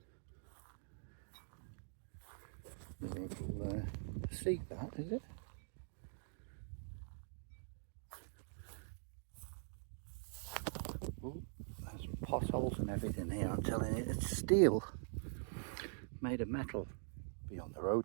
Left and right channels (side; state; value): left; silent; digital silence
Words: seat, that is it? Ooh, there's potholes and everything here. I'm telling you, it's steel made of metal. Be on the